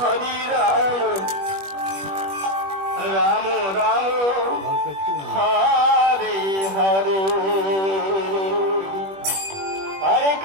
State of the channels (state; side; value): late; left; 21 ms